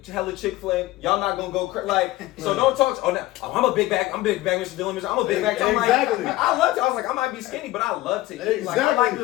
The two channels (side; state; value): right; quieter; 17.3 dB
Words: hella Chick-fil-A, y'all not gonna go like. So don't talk. I'm a big bag. I'm a big bag, Mr. Dillon. I'm a big bag. I'm exactly. Like, I love to. I was like, I might be skinny, but I love to eat. Exactly. Like, I like